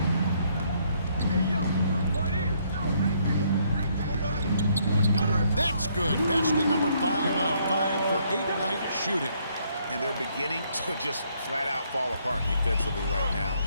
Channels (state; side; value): inverted; both; correlation -0.69